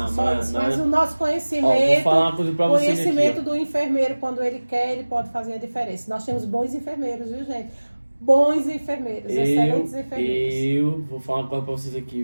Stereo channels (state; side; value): inverted; both; correlation -1.00